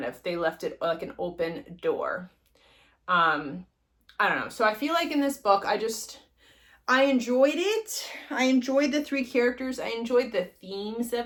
of, they left it like an open door. I don't know. So I feel like in this book, I enjoyed it. I enjoyed the 3 characters. I enjoyed the themes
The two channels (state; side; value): identical; both; correlation 1.00